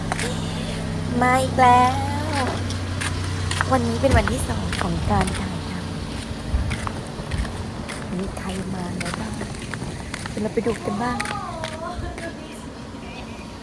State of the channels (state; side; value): identical; both; correlation 1.00